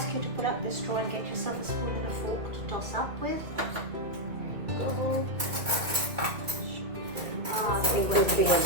you to pull up the straw and get yourself a spoon and a fork to toss up with. Go. Big one.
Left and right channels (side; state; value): left; late; 2.1 ms